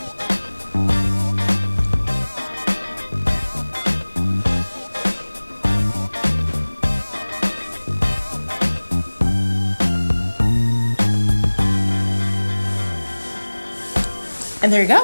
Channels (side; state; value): both; inverted; correlation -1.00